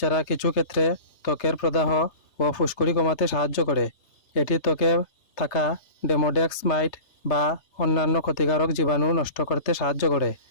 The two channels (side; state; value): right; late; 3.3 ms